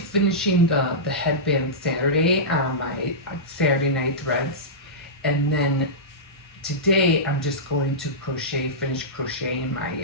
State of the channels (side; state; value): both; normal; correlation -0.15